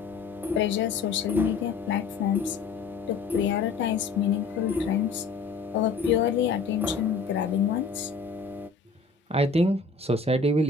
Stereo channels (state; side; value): quieter; right; 4.7 dB